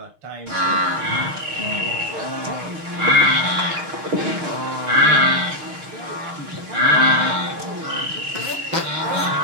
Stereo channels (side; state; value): left; late; 6.6 ms